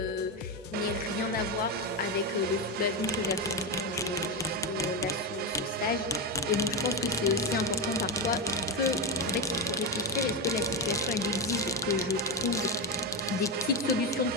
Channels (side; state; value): both; normal; correlation 0.10